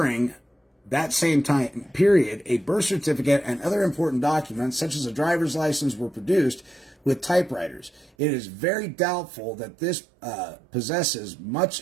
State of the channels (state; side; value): drops out; left; at 8.1 s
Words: that same time period, a birth certificate and other important documents, such as a driver's license, were produced with typewriters. It is very doubtful that this possesses